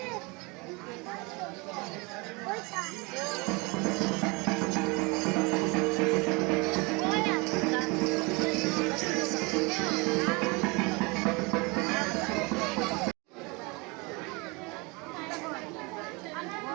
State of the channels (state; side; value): quieter; left; 27.6 dB